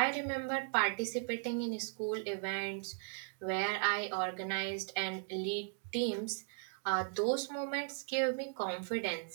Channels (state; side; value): silent; left; 53 dB below the other